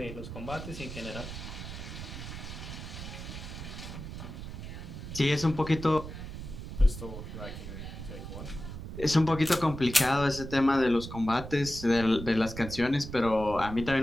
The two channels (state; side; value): noise; right; rumble, 9 dB below the sound